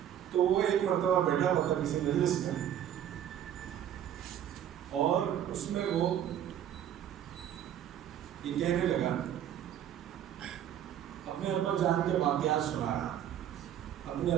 تو وہ ایک مرتبہ بیٹھا ہوا تھا کسی مجلس میں، اور اس میں وہ یہ کہنے لگا، اپنے ابا جان کے واقعات سنا رہا، اپنے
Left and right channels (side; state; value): left; quieter; 10.4 dB